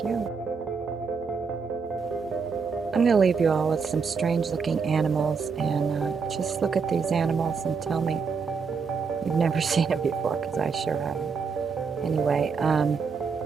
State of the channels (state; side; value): quieter; left; 5.4 dB